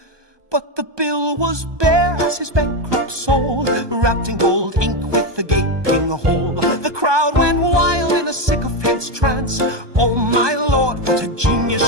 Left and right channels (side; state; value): left; late; 1.2 ms